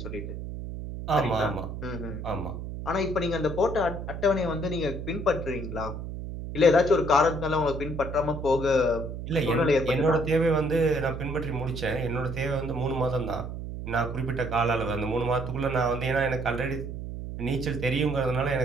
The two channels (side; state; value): right; noise; hum, 7 dB below the sound